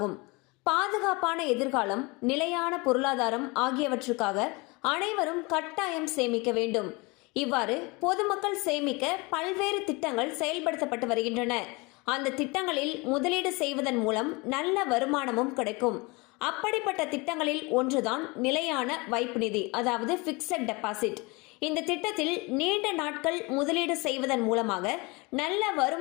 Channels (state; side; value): quieter; right; 26.3 dB